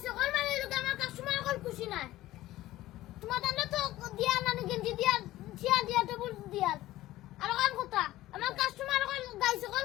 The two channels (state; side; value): quieter; right; 16.0 dB